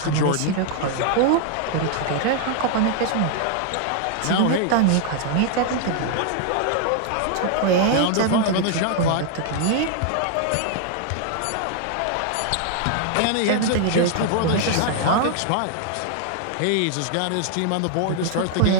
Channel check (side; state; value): both; different; correlation 0.00